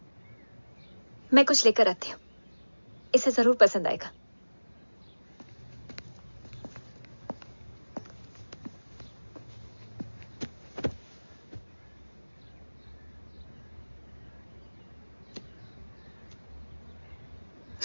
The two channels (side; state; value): both; inverted; correlation -1.00